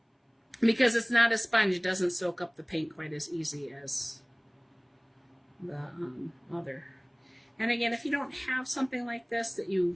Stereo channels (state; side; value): identical; both; correlation 1.00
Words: because it's not a sponge. It doesn't soak up the paint quite as easy as the other. And again, if you don't have something like this that